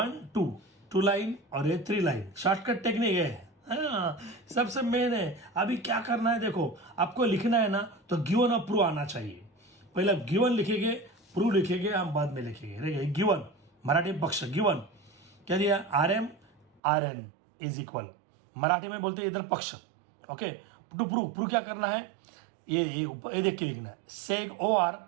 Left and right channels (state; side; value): drops out; left; at 16.8 s